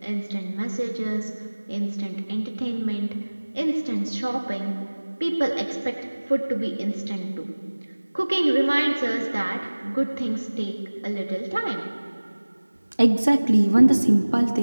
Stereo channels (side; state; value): both; inverted; correlation -1.00